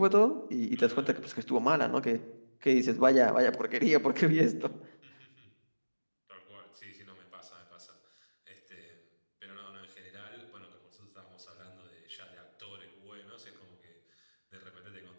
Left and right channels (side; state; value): both; inverted; correlation -1.00